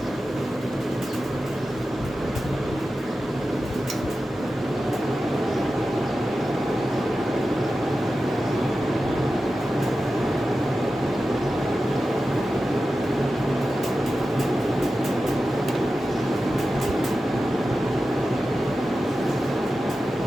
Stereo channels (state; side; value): normal; both; correlation 0.93